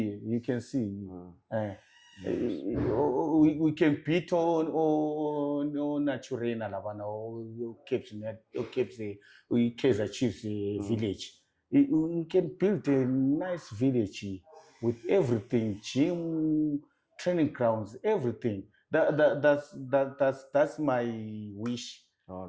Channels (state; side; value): identical; both; correlation 1.00